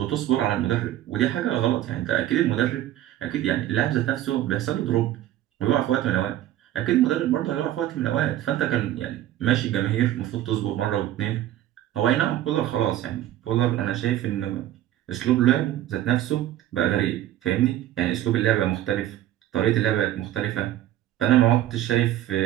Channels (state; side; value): quieter; left; 13.0 dB